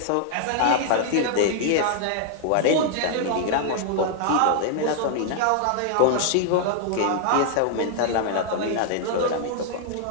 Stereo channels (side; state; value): both; different; correlation -0.01